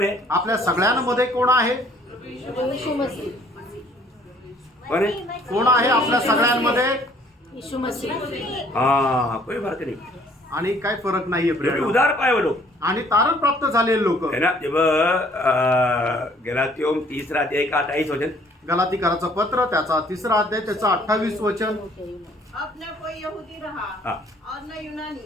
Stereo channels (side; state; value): both; normal; correlation 0.59